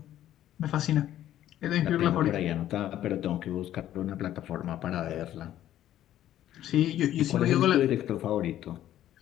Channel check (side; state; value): right; quieter; 12.4 dB